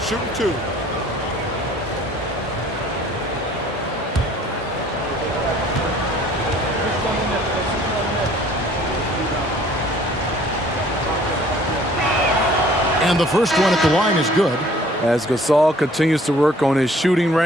2. Shooting 2. And the first one at the line is good. As Gasol continues to work on his shooting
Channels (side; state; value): both; normal; correlation 0.55